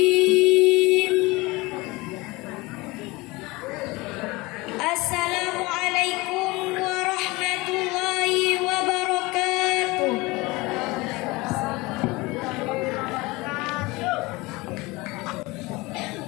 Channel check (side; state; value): right; quieter; 22.8 dB